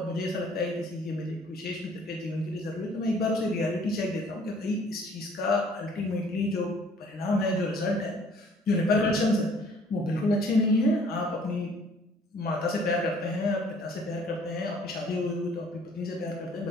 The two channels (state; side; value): normal; both; correlation 0.57